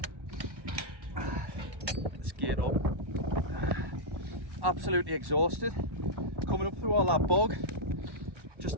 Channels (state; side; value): late; left; 1.1 ms